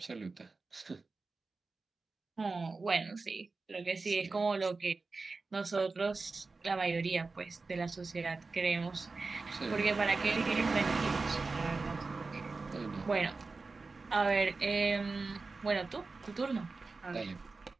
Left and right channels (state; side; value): quieter; left; 3.9 dB